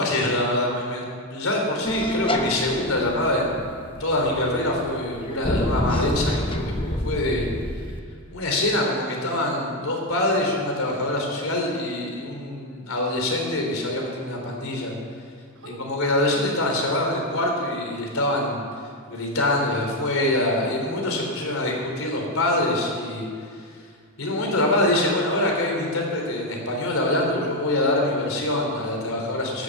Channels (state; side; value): normal; both; correlation 0.07